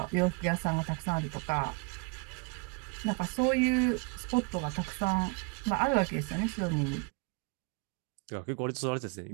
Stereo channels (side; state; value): left; quieter; 33.1 dB